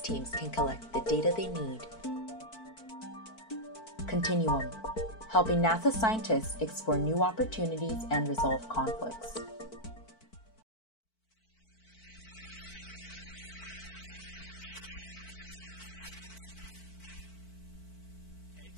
teams can collect the data they need. Continuum, helping NASA scientists explore new opportunities and resolve conflicts.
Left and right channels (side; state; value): right; late; 4.5 ms